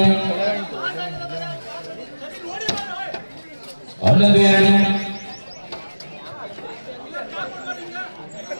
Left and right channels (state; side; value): inverted; both; correlation -1.00